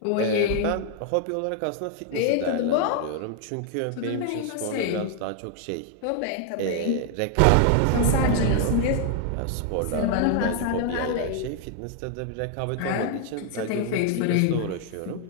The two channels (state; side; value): different; both; correlation 0.00